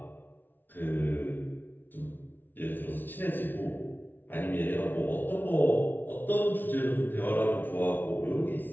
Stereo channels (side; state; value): right; late; 0.092 ms